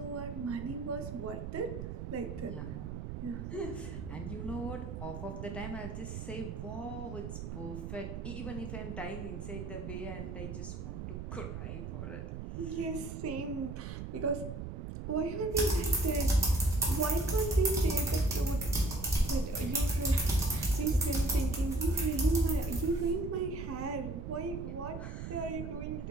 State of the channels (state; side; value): noise; right; rumble, 6 dB below the sound